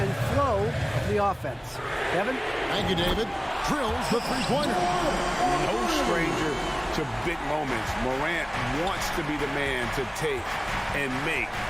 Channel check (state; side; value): identical; both; correlation 1.00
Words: flow of the offense. Kevin? Thank you, David. Drills the three-pointer. No stranger to big moments. Morant wants to be the man to take and make